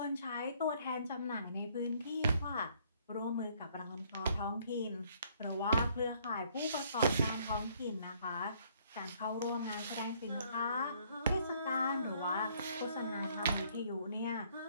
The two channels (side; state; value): both; inverted; correlation -0.64